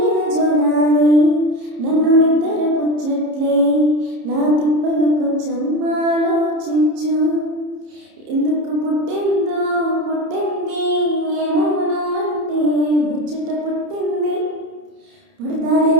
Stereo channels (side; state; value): left; late; 30 ms